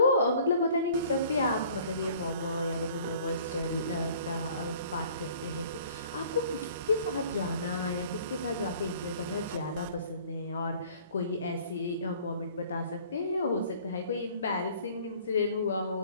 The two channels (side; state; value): both; inverted; correlation -0.53